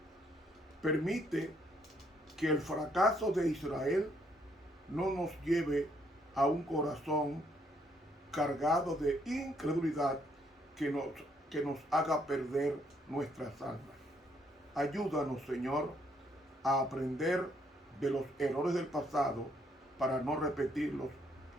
Permite que el fracaso de Israel no nos lleve a un corazón cargado de incredulidad que nos haga perder nuestras almas. Ayúdanos, Señor, a aprender de los errores del pasado para no repetirlos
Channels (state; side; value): normal; both; correlation 0.70